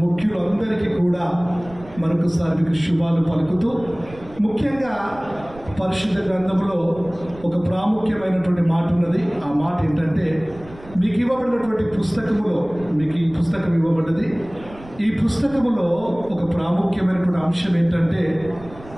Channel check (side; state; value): right; noise; rumble, 19 dB below the sound